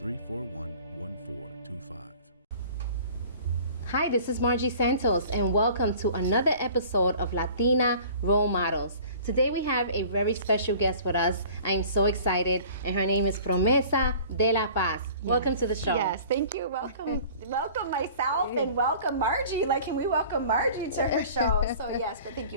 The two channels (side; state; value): both; inverted; correlation -0.47